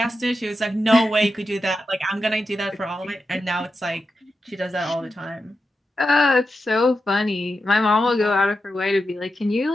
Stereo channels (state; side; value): normal; both; correlation 0.89